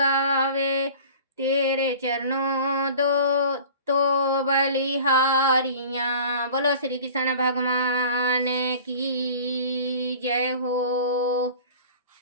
तेरे चरणों दो तो बलिहारियाँ। बोलो श्री कृष्ण भगवान की जय हो।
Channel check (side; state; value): both; inverted; correlation -0.43